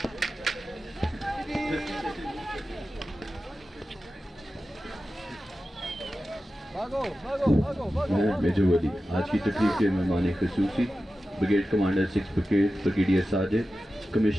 major Wali. आज की तकरीब के मेहमान खसूसी brigade commander 6 brigade brigadier Sajid,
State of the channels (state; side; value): normal; both; correlation 0.93